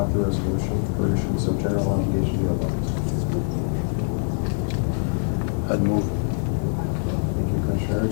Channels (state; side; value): silent; right; 55 dB below the other